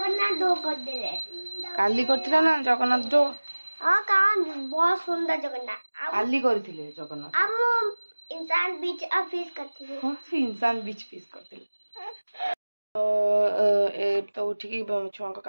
दो कर दे काली करथिला ना जगन्नाथ दो हां का बहुत सुंदर जगन्नाथ काली करथिले जगन्नाथ हम इंसान बीच फिश करथिले हां से इंसान बीच फिश करथिले तो उठिकी छुआ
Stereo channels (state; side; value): inverted; both; correlation -1.00